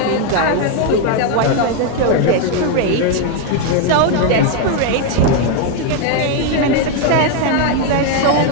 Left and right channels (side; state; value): both; different; correlation 0.01